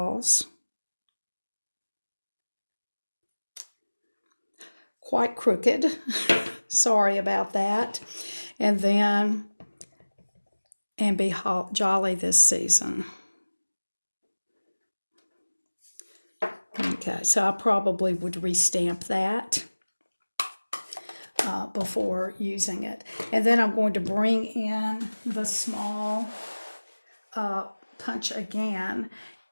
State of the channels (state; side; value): inverted; both; correlation -1.00